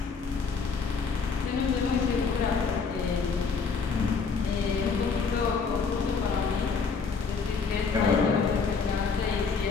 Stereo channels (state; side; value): quieter; right; 5.2 dB